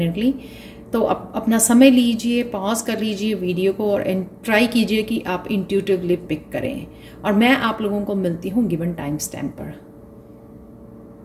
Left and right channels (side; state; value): both; identical; correlation 1.00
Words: तो अपना समय लीजिए, पॉज कर लीजिए वीडियो को और ट्राई कीजिए कि आप इंट्यूटिवली पिक करें। और मैं आप लोगों को मिलती हूँ गिवन टाइम स्टैम्प पर।